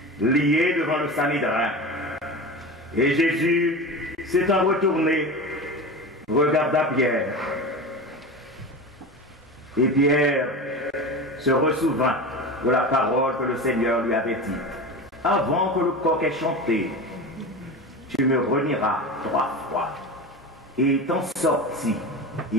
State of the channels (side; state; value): both; normal; correlation 0.28